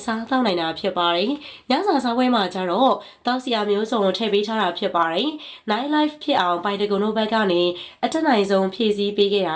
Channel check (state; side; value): identical; both; correlation 1.00